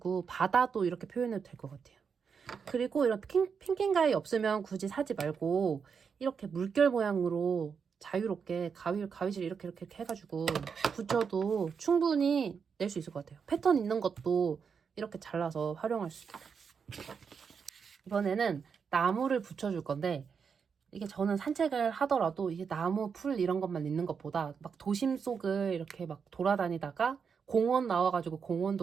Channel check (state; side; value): quieter; left; 6.2 dB